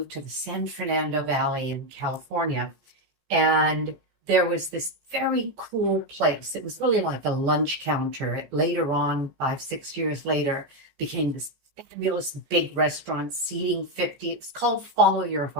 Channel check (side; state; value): left; late; 14 ms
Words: to the San Fernando Valley in California. And there was this very cool place. It was really like a lunch counter. Later on, 5, 6 years later, became this fabulous big restaurant, seating 50. It's called Follow Your